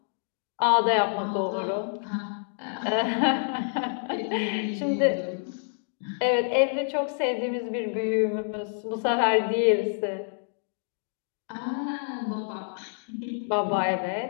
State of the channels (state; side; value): silent; right; digital silence